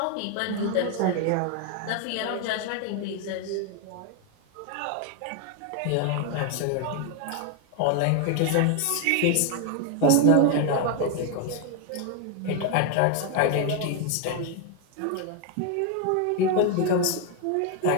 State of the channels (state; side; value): different; both; correlation 0.01